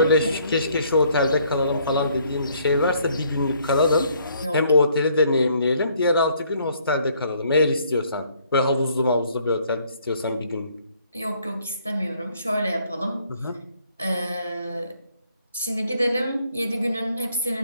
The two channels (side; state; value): both; inverted; correlation -0.65